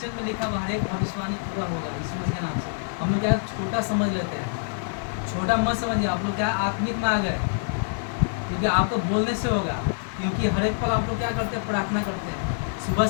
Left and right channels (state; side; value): silent; right; 58 dB below the other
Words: में लिखा हुआ हर एक भविष्यवाणी पूरा होगा यीशु मसीह के नाम से। हम लोग क्या छोटा समझ लेते हैं, छोटा मत समझिए। आप लोग क्या आत्मिक में आ गए, क्योंकि आपको बोलने से होगा। क्योंकि हर एक पल आप लोग क्या करते हैं? प्रार्थना करते हैं, सुबह